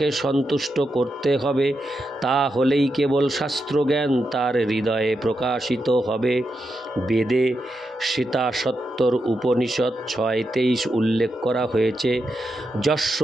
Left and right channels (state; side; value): normal; both; correlation 0.86